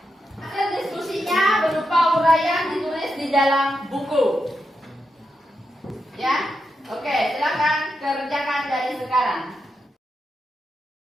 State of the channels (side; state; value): both; normal; correlation 0.86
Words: Hasil diskusinya berupa uraian ditulis di dalam buku. Ya? Oke, silakan kerjakan dari sekarang.